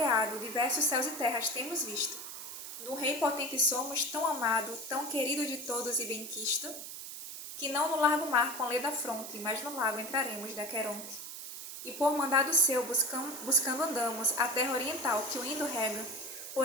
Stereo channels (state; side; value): noise; right; hiss, 9 dB below the sound